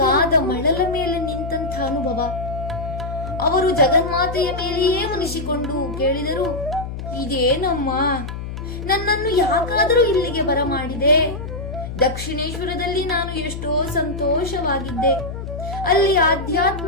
ಮಳಲ ಮೇಲೆ ನಿಂತಹ ಅನುಭವ. ಅವರು ಜಗನ್ಮಾತೆಯ ಮೇಲೆಯೇ ಮುನಿಸಿಕೊಂಡು ಕೇಳಿದರು, ಇದೇನಮ್ಮ, ನನ್ನನ್ನು ಯಾಕಾದರೂ ಇಲ್ಲಿಗೆ ಬರಮಾಡಿದೆ? ದಕ್ಷಿಣೇಶ್ವರದಲ್ಲಿ ನಾನು ಎಷ್ಟೋ ಸಂತೋಷವಾಗಿದ್ದೆ. ಅಲ್ಲಿ ಆಧ್ಯಾತ್ಮ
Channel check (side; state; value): left; noise; hum, 7 dB below the sound